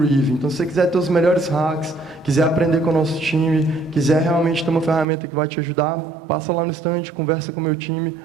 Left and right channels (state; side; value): drops out; left; at 5.1 s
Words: Então, se você quiser ter os melhores hacks, quiser aprender com o nosso time, quiser realmente ter uma ferramenta que vai te ajudar, passa lá no stand, conversa com o meu time,